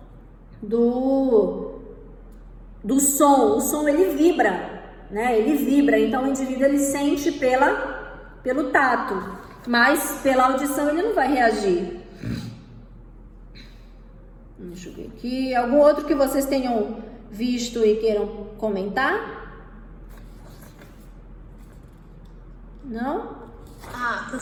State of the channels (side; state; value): both; identical; correlation 1.00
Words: do som. O som, ele vibra, né? Ele vibra, então o indivíduo, ele sente pelo tato, mas pela audição ele não vai reagir. Deixa eu ver aqui. Algum outro que vocês tenham visto e queiram comentar? Não? Ah,